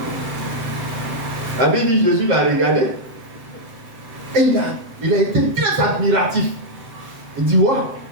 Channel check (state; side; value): late; left; 7.8 ms